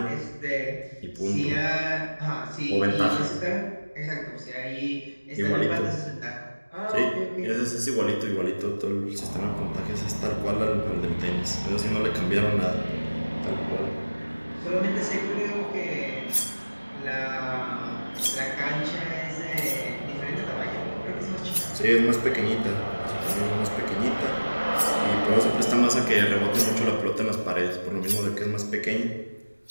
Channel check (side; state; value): both; inverted; correlation -1.00